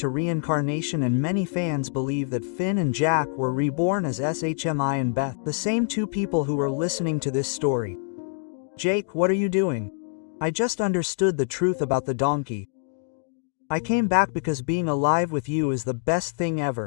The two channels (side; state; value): right; silent; 61 dB below the other